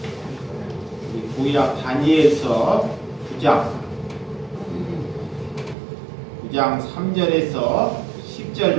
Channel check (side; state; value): left; drops out; at 5.8 s